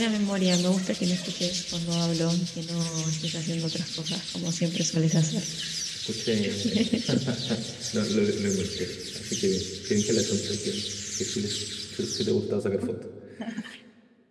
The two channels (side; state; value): both; identical; correlation 1.00